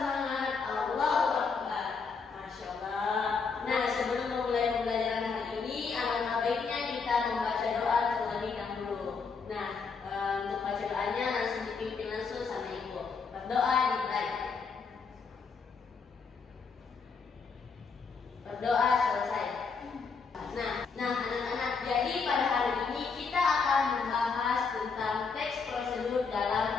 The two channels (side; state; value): right; quieter; 5.1 dB